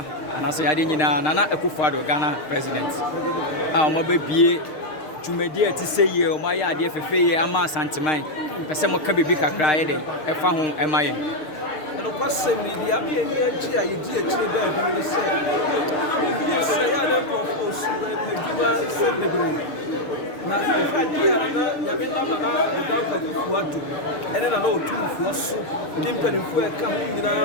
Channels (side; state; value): right; late; 6.5 ms